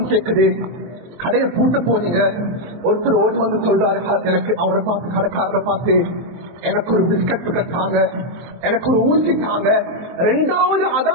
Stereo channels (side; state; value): left; late; 24 ms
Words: கேட்குது, கடையை பூட்ட போறீங்க. ஒருத்தர் ஓடி வந்து சொல்றாரு, எனக்கு அவரை பார்த்து கடைக்காரரை பார்த்து எனக்கு ஒரு பிஸ்கட் கட்டாங்க, எனக்கு ஒரு ஊசி தாங்க. 2வது